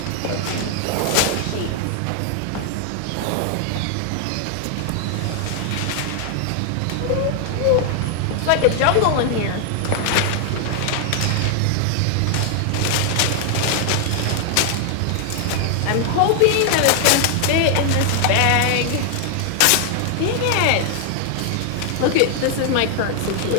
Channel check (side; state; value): both; different; correlation 0.00